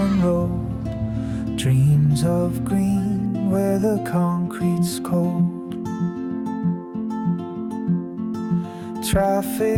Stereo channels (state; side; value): identical; both; correlation 1.00